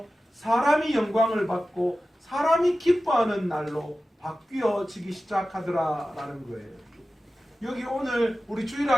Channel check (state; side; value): normal; both; correlation 0.95